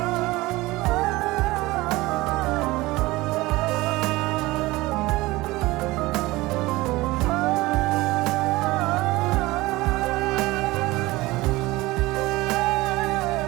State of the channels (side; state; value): left; quieter; 20.1 dB